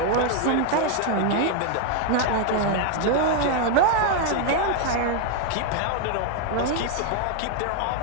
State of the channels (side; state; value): both; different; correlation 0.00